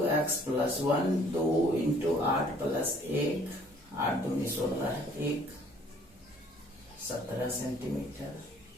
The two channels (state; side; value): normal; both; correlation 0.58